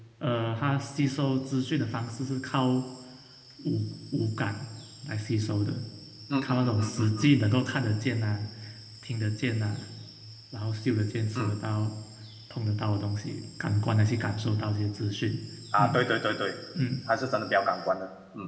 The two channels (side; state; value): both; identical; correlation 1.00